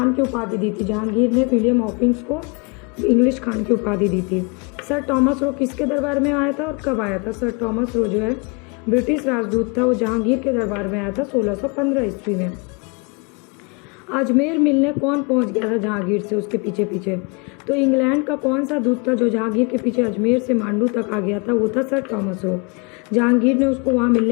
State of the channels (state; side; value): quieter; right; 32.4 dB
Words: की उपाधि दी थी? जहांगीर ने विलियम हॉकिंस को इंग्लिश खान की उपाधि दी थी। सर टॉमस रो किसके दरबार में आया था और कब आया था? सर टॉमस रो जो है ब्रिटिश राजदूत था, वो जहांगीर के दरबार में आया था 1615 ईस्वी में। अजमेर मिलने कौन पहुंच गया था जहांगीर से उसके पीछे पीछे? तो इंग्लैंड का कौन सा दूत था जो जहांगीर के पीछे अजमेर से मांडू तक आ गया था? वो था सर टॉमस रो। जहांगीर ने उसको वहाँ